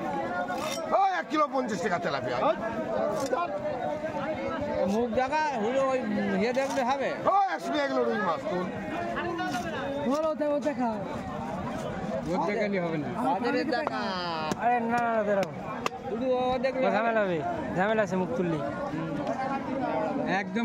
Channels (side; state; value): both; identical; correlation 1.00